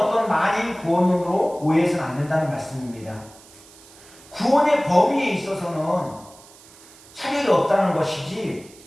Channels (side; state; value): right; noise; hiss, 23 dB below the sound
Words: 만인 구원론으로 오해해서는 안 된다는 말씀입니다. 구원의 범위에 있어서는 차별이 없다는 것이지